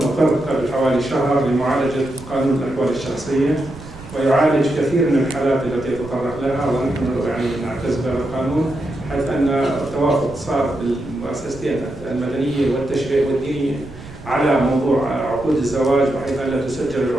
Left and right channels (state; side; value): noise; right; rumble, 16 dB below the sound